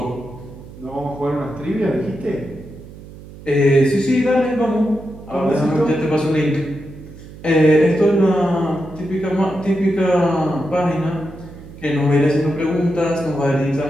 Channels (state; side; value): noise; right; hum, 17 dB below the sound